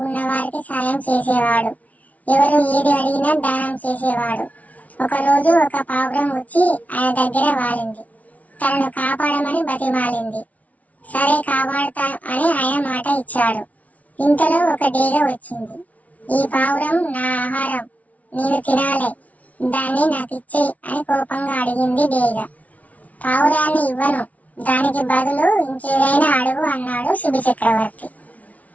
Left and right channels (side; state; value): right; late; 0.070 ms